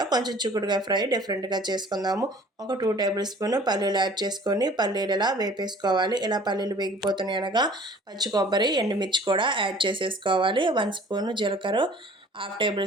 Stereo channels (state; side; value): normal; both; correlation 0.50